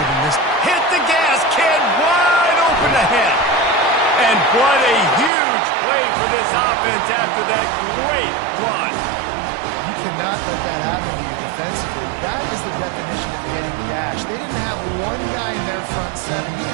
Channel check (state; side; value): drops out; left; at 5.3 s